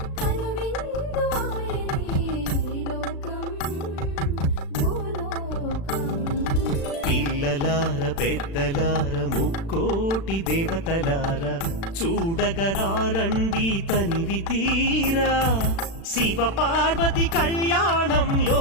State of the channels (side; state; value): right; late; 36 ms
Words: పిల్లలార పెద్దలార ముక్కోటి దేవతలార చూడగరారండి తనివి తీరా శివ పార్వతి కళ్యాణం